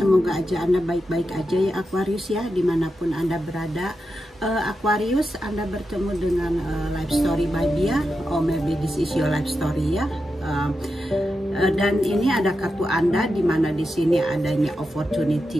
semoga aja Anda baik-baik aja ya Aquarius ya, dimanapun Anda berada. Aquarius, Anda bertemu dengan life story by Bia, or maybe this is your life story ya. Dan ini ada kartu Anda, dimana di sini adanya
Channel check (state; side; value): normal; both; correlation 0.88